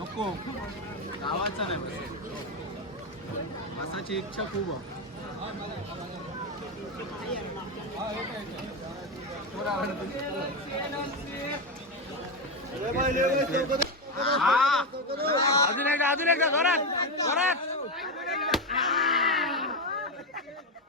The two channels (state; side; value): normal; both; correlation 0.11